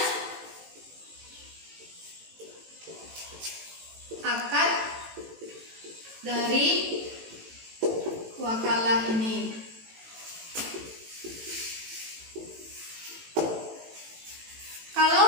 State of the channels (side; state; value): left; late; 18 ms